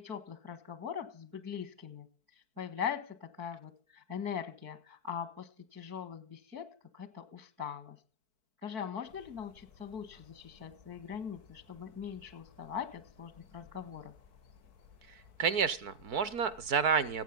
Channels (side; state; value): left; late; 4.6 ms